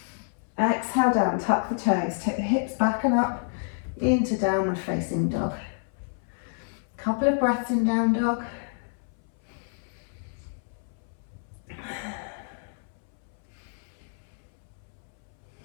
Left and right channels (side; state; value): right; silent; 59 dB below the other